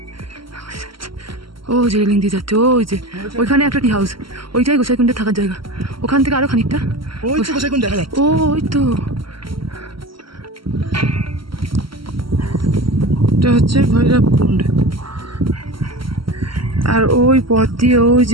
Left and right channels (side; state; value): left; late; 0.74 ms